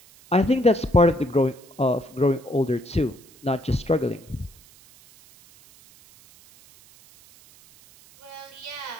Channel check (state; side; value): noise; right; hiss, 25 dB below the sound